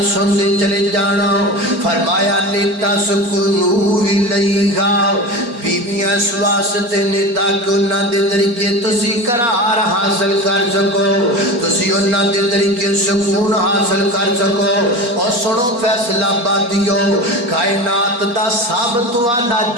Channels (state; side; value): late; left; 4.2 ms